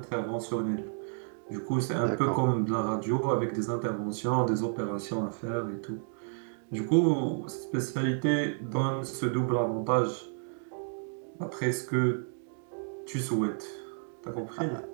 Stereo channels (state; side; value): silent; left; 57 dB below the other